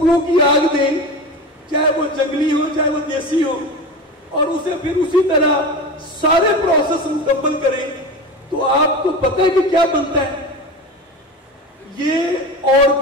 کی آگ دیں، چاہے وہ جنگلی ہو چاہے وہ دیسی ہو، اور اسے پھر اسی طرح سارے پروسیس مکمل کریں، تو آپ کو پتہ ہے کہ کیا بنتا ہے؟ یہ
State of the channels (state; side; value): normal; both; correlation 0.28